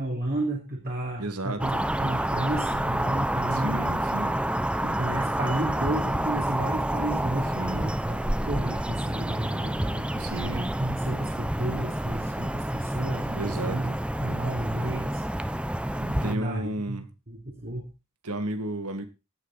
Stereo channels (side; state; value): both; normal; correlation 0.83